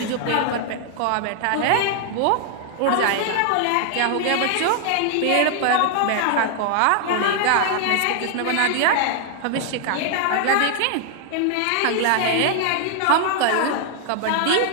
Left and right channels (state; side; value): different; both; correlation 0.00